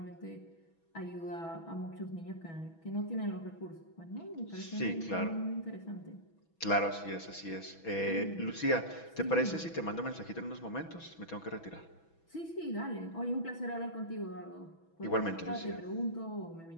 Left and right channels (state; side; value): late; right; 6.1 ms